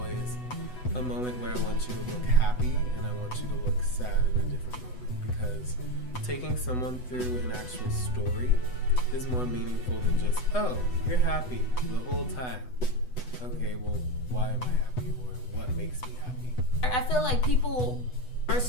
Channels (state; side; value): late; right; 8.0 ms